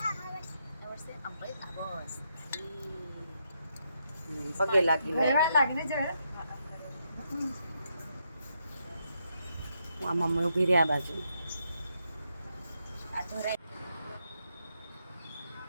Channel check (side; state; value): both; inverted; correlation -0.79